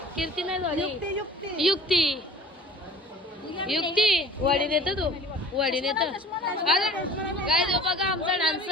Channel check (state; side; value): normal; both; correlation 0.47